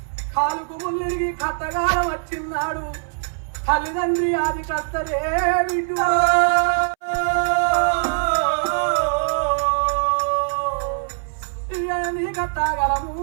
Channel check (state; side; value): silent; left; 64 dB below the other